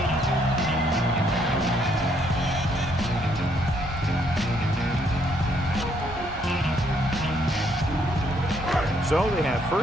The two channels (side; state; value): both; normal; correlation 0.70